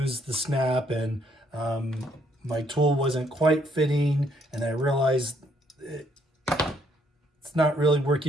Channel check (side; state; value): both; normal; correlation 0.69